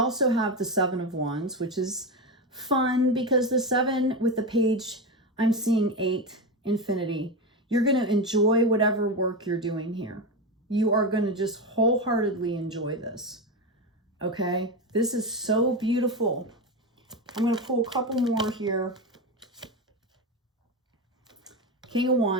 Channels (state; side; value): normal; both; correlation 0.16